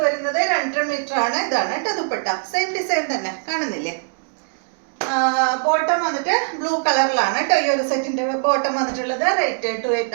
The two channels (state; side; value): silent; left; digital silence